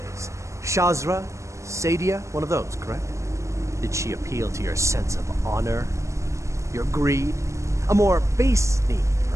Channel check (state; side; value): late; left; 0.15 ms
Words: Shazra? Sadia? One of those, correct? Did she appeal to your sense of honor? Your greed? A more base need,